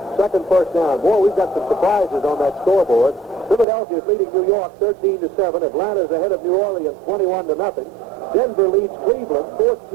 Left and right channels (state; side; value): drops out; left; at 3.7 s